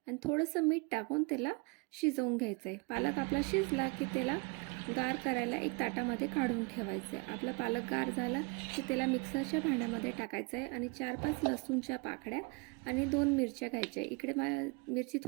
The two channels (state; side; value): quieter; left; 28.9 dB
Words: आणि थोडंसं मीठ टाकून त्याला शिजवून घ्यायचं आहे. पालक आपला शिजला की त्याला गार करायला एक ताटामध्ये काढून ठेवायचं आहे. आपला पालक गार झाला की त्याला मिक्सरच्या भांड्यामध्ये टाकायचं आहे आणि 4-5 लसूणच्या पाकळ्या आणि 2 मिरच्या घ्यायच्या. इकडे मिरची